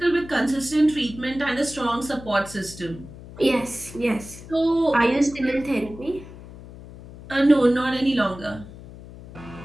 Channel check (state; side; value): noise; left; hum, 16 dB below the sound